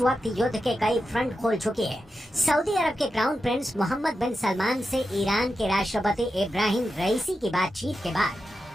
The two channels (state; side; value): normal; both; correlation 0.90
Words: वक्त युद्ध के कई फ्रंट खोल चुकी है। सऊदी अरब के क्राउन प्रिंस मोहम्मद बिन सलमान से ईरान के राष्ट्रपति इब्राहिम रईसी की बातचीत के बाद